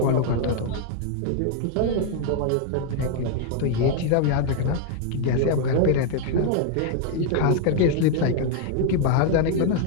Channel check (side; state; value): both; different; correlation 0.00